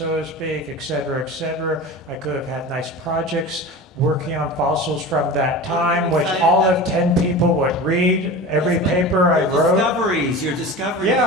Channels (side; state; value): both; normal; correlation 0.32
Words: to speak, et cetera, et cetera. I could have had nice projects working on fossils from that time, which all of 10 people would read every paper I wrote. Your discoveries.